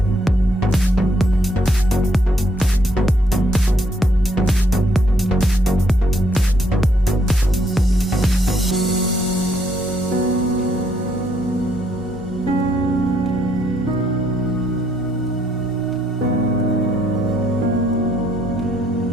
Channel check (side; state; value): both; normal; correlation 0.71